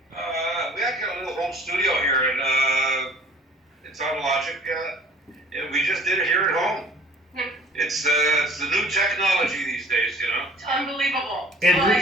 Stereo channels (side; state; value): both; normal; correlation 0.51